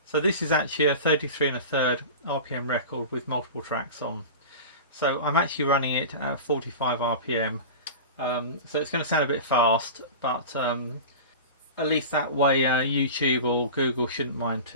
So this is actually a 33 1/3 RPM record with multiple tracks on. So I'm actually running it at 45 RPM. So it's going to sound a bit fast, but at least that way YouTube or Google shouldn't mind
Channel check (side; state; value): both; inverted; correlation -0.32